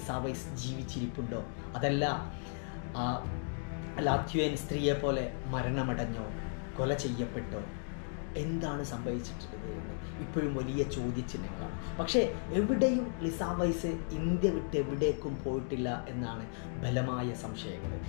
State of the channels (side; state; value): right; silent; 54 dB below the other